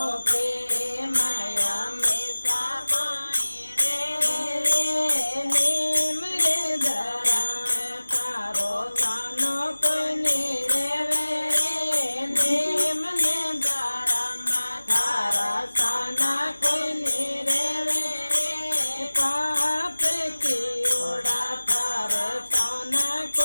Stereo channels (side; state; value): both; inverted; correlation -1.00